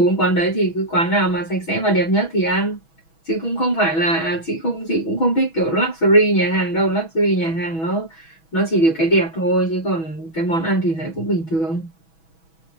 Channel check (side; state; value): right; late; 6.2 ms